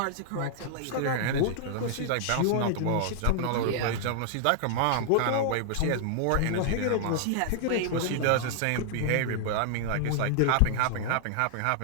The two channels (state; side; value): different; both; correlation -0.01